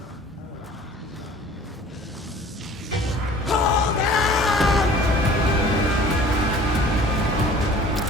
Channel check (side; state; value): both; normal; correlation 0.47